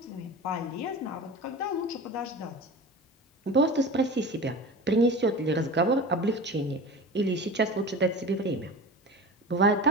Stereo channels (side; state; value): both; normal; correlation 0.33